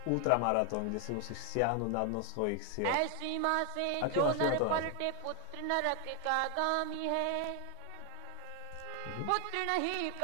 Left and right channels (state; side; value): different; both; correlation 0.00